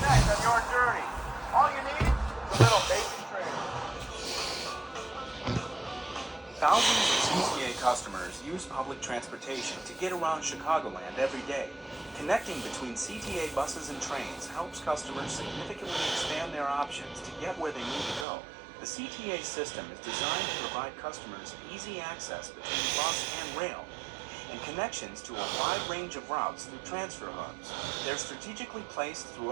on your journey. All you need is a little basic training. Thousands of CTA customers use public transportation to get around Chicagoland every day. Connecting between CTA buses and trains helps customers significantly expand their options to get where they need to go. The CTA system is designed to provide customers easy access between bus and rail, and connections to a wide range of routes through transfer hubs. They're strategically placed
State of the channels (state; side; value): drops out; left; at 18.2 s